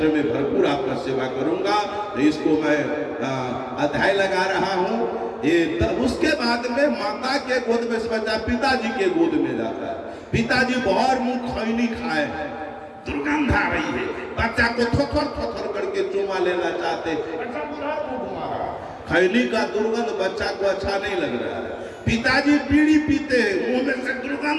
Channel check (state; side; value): identical; both; correlation 1.00